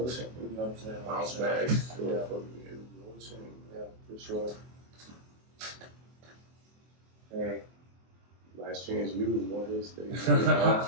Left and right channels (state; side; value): late; left; 24 ms